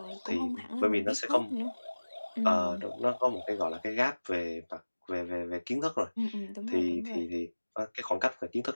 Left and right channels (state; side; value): inverted; both; correlation -1.00